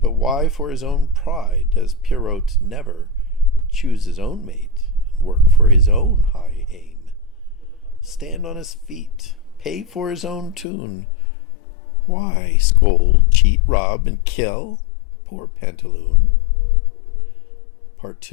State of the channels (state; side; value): drops out; right; at 10.7 s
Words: But why, for his own pride, does Pierrot never choose his own mate and work for his own high aim? Stand on his feet, pay for his own tune. Why scold, cheat, rob, and kill poor Pantaloon? Part